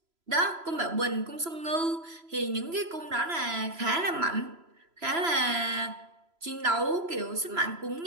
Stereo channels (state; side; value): late; left; 3.0 ms